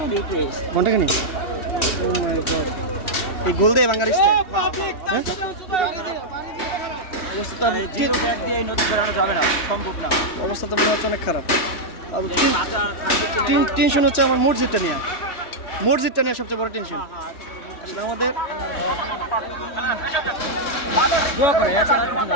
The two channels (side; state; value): right; late; 3.2 ms